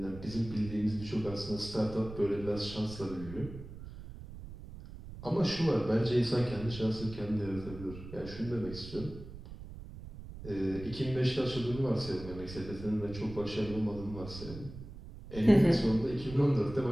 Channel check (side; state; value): right; noise; rumble, 13 dB below the sound